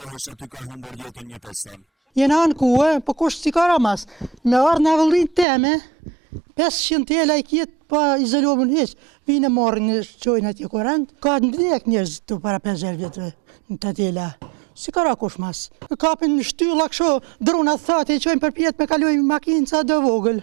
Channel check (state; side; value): drops out; left; at 5.5 s